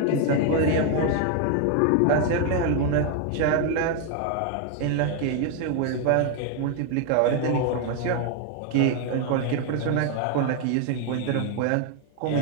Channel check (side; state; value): both; different; correlation 0.01